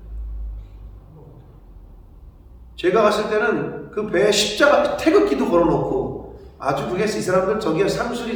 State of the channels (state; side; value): identical; both; correlation 1.00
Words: 제가 갔을 때는 그 배에 십자가 태극기도 걸어놓고 아주 그게 이 사람들 저기가